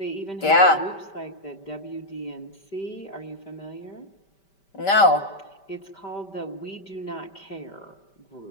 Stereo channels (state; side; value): late; right; 5.1 ms